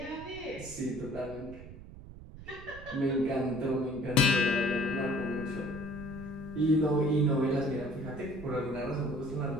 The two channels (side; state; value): right; noise; rumble, 15 dB below the sound